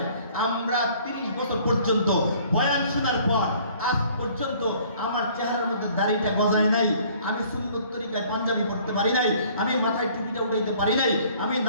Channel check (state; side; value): inverted; both; correlation -0.56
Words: আমরা 30 বছর পর্যন্ত বয়ান শোনার পর আজ পর্যন্ত আমার চেহারার মধ্যে দাড়িটা গজায় নাই, আমি সুন্নত তরিকায় পাঞ্জাবি পড়তে পারি নাই, আমি মাথায় টুপিটা উঠাইতে পারি নাই, আমি